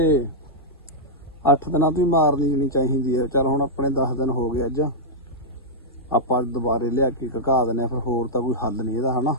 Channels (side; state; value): both; normal; correlation -0.08